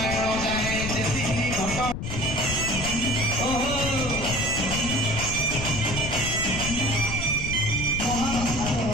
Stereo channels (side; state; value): left; noise; rumble, 5 dB below the sound